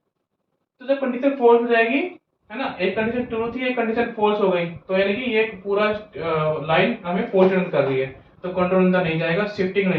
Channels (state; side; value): identical; both; correlation 1.00